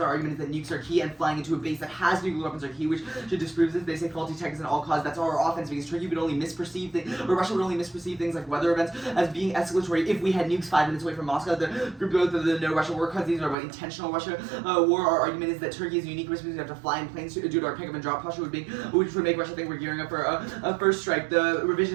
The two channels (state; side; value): drops out; left; at 13.6 s